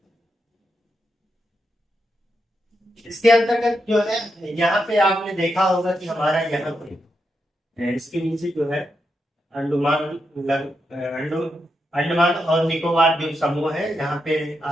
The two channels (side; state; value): both; normal; correlation 0.84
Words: इसके अंतर्गत जो है यहाँ पे आपने देखा होगा कि हमारा यहाँ पे इसके नीचे जो है अंडमान अंडमान और निकोबार द्वीप समूह है, यहाँ पे